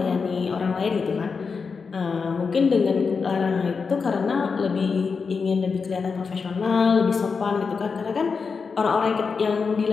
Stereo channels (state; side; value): quieter; right; 5.2 dB